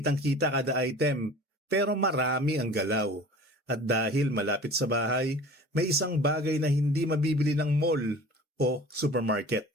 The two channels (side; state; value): both; normal; correlation 0.42